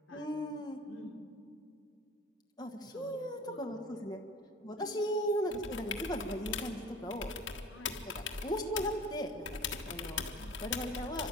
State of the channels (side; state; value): both; normal; correlation 0.43